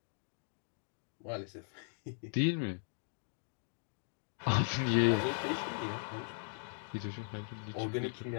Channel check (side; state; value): right; silent; digital silence